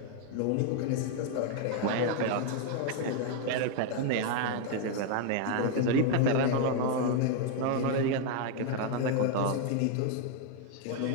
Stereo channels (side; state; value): both; different; correlation 0.00